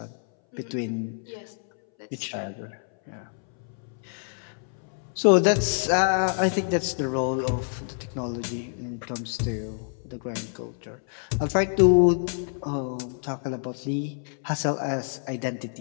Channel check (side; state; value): right; silent; 60 dB below the other